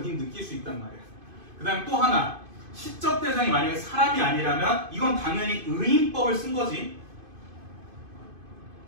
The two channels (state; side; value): late; left; 2.5 ms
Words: 느낄 수 있단 말이야. 그 다음에 또 하나, 시적 대상이 만약에 사람이 아니라면 이건 당연히 의인법을 쓴 거지.